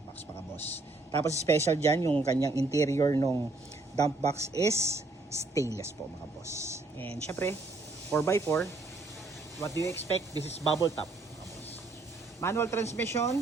box mga boss. Tapos special dyan yung kanyang interior nung dump box is stainless po mga boss. And syempre 4x4. What do you expect? This is bubble top mga boss. Manual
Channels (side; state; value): left; quieter; 3.2 dB